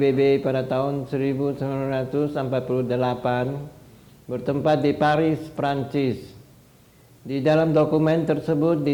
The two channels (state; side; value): identical; both; correlation 1.00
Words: pada tahun 1948 bertempat di Paris, Prancis. Di dalam dokumen tersebut